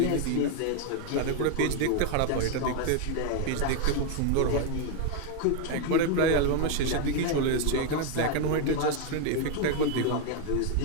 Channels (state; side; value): different; both; correlation 0.00